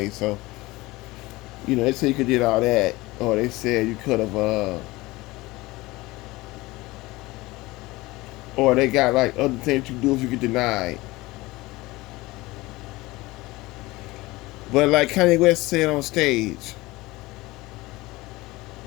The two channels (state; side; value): quieter; right; 20.6 dB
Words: so they say you could did all that, or they said you could have, or they got like other things you do if you get denied. But like Kanye West said on stage,